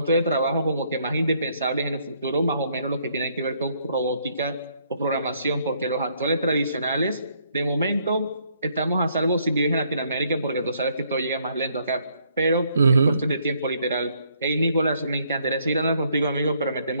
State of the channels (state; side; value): inverted; both; correlation -0.69